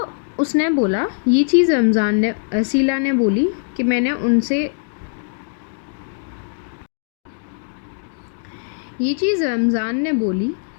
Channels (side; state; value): right; silent; digital silence